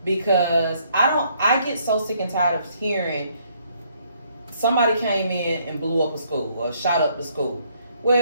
because I get so sick and tired of hearing somebody came in and blew up a school or shot up the school.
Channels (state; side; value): inverted; both; correlation -0.68